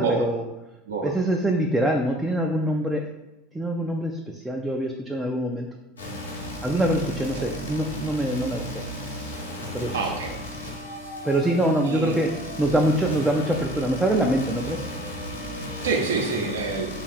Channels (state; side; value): normal; both; correlation 0.50